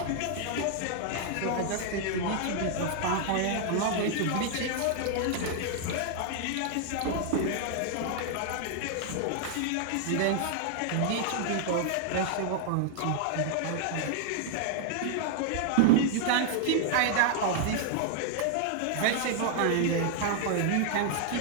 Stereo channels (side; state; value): both; different; correlation 0.00